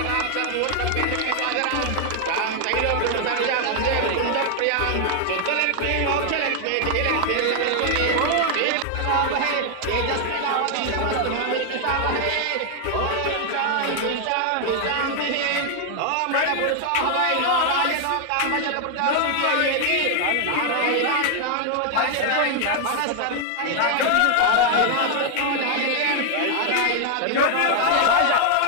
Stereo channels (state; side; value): different; both; correlation 0.00